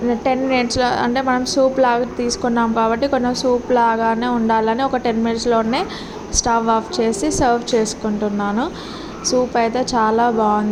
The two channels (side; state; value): both; identical; correlation 1.00